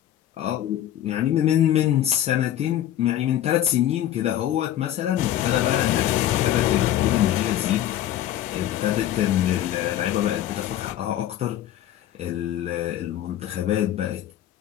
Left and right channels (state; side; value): quieter; right; 12.2 dB